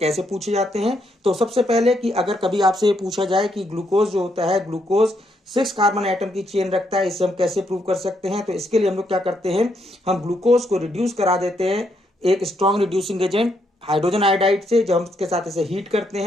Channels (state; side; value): normal; both; correlation 0.76